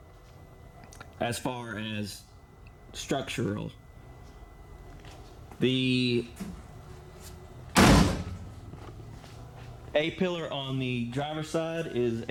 As far as structural, the A-pillar on the driver's side is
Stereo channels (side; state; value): both; identical; correlation 1.00